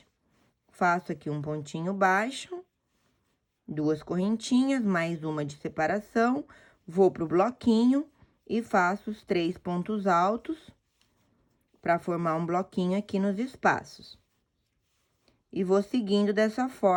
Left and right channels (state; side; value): identical; both; correlation 1.00